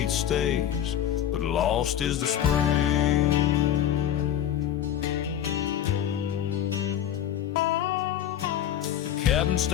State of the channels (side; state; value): right; quieter; 10.5 dB